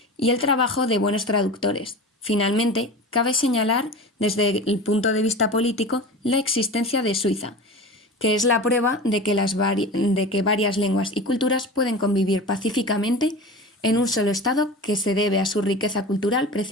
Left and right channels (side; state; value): both; normal; correlation 0.32